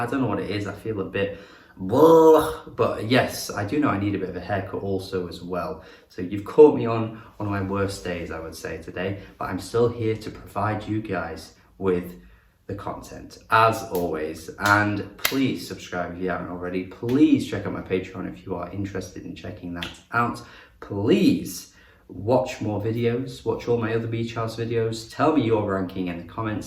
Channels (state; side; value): identical; both; correlation 1.00